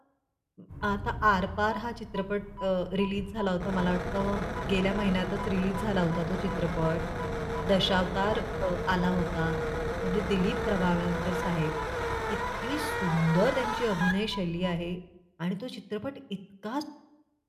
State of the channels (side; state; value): both; identical; correlation 1.00